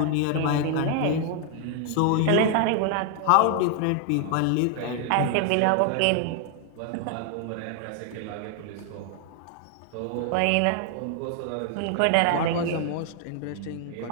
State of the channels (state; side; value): different; both; correlation 0.00